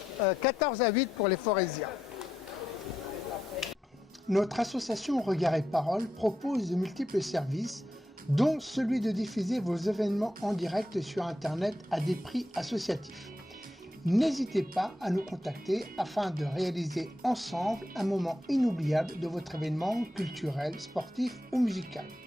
14 à 8 pour les Forésiens. Notre association Regard et Parole propose de multiples services, dont celui de diffuser vos événements en direct sur Internet à des prix associatifs. N'hésitez pas à nous contacter afin de réaliser ensemble un moment inoubliable de votre événement culturel, sportif ou musical.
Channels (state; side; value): normal; both; correlation 0.83